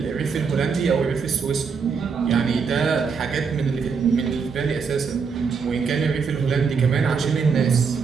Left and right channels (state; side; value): quieter; left; 5.7 dB